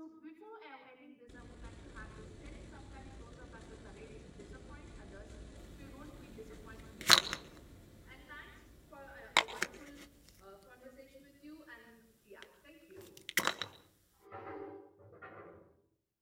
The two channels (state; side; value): identical; both; correlation 1.00